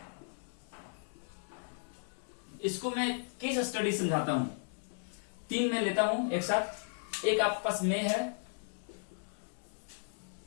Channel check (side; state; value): right; silent; digital silence